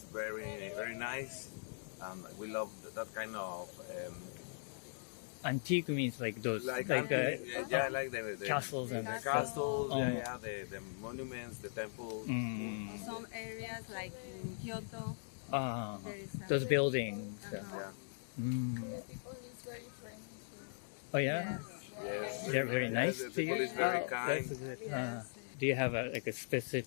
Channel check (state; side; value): silent; right; digital silence